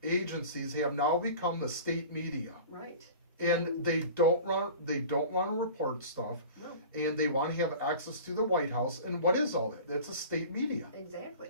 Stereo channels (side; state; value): both; inverted; correlation -0.39